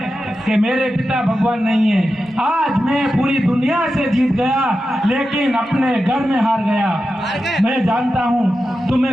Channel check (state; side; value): normal; both; correlation 0.91